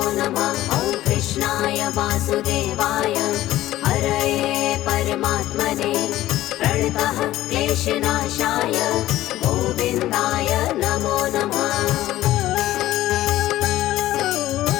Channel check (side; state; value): right; quieter; 14.9 dB